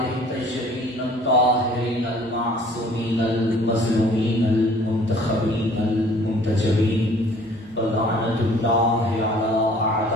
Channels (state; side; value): normal; both; correlation 0.53